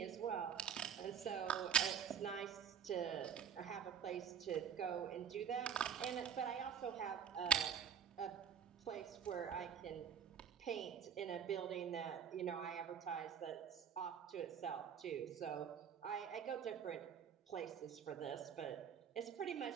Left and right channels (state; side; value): quieter; left; 8.1 dB